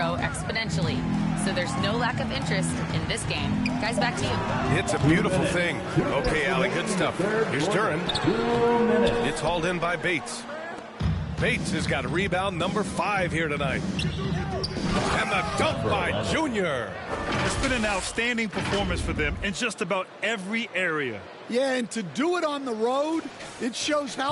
exponentially. So there's no lack of interest in this game. Guys, back to you. It's a beautiful thing. Okay, Allie, good stuff. Here's Duran. It's hauled in by Bates. Bates has got a rebound number 5 here tonight. And the dunk by Junior. It's been an outstanding performance for them in just about every area. Yeah, and to do it on the road, it shows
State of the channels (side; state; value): both; identical; correlation 1.00